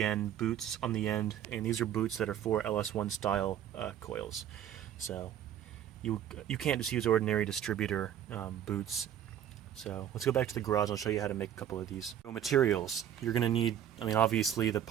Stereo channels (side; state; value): left; quieter; 10.3 dB